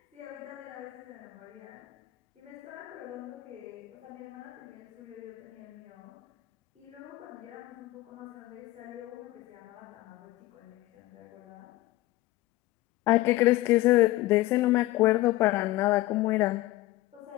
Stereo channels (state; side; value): quieter; right; 17.8 dB